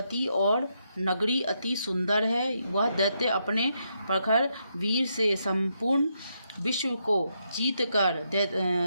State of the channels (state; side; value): inverted; both; correlation -0.80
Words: और नगरी अति सुंदर है। वह दैत्य अपने प्रखर वीर से संपूर्ण विश्व को जीतकर